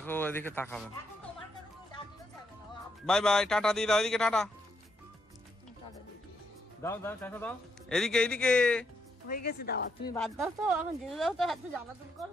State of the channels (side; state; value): both; normal; correlation 0.78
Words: এদিকে তাকাবেন। বাই বাই, টাটা দিয়ে দাও, এদিকে টাটা দাও দাও, টাকা দাও, এদিকে এদিকে। হয়ে গেছে দাওয়া, তুমি বাদ দাও তো, এখন যেতে দাও তো, এত জ্বালাতন করো